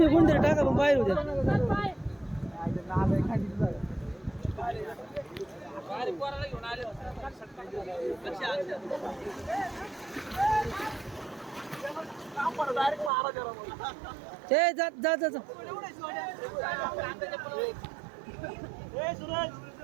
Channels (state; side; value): drops out; left; at 13.1 s